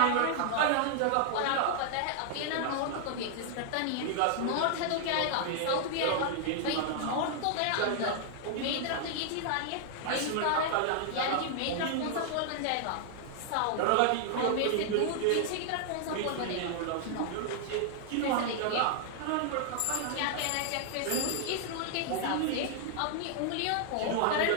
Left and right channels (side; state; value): both; different; correlation -0.01